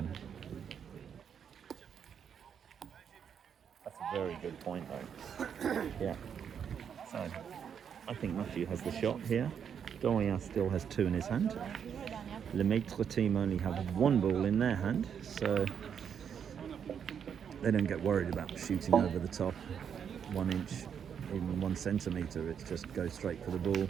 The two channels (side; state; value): left; quieter; 7.7 dB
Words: That's a very good point, though. Yeah. So, I think Matthew has the shot here. Dorian still has 2 in his hand. Le Maitre team only have 1 ball in their hand, so they don't get worried about shooting over the top 1 inch even 1 centimetre, it just goes straight for the ball.